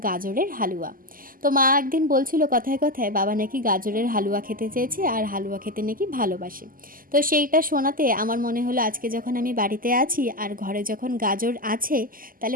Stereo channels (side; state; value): left; late; 0.41 ms